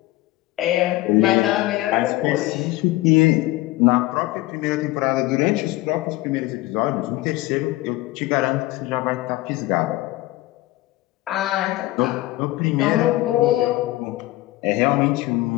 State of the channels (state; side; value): quieter; right; 18.1 dB